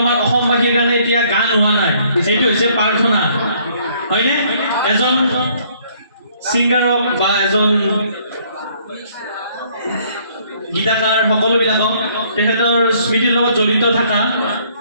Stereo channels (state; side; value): inverted; both; correlation -0.63